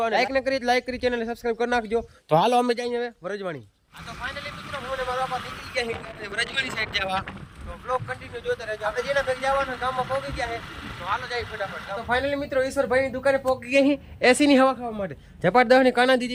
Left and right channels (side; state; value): both; identical; correlation 1.00